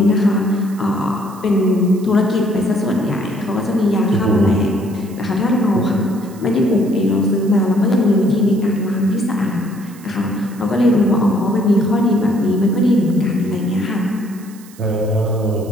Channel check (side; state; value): right; noise; hiss, 23 dB below the sound